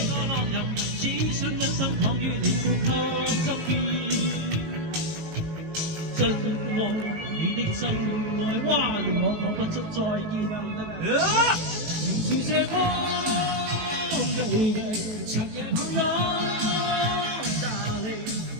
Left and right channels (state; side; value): late; left; 19 ms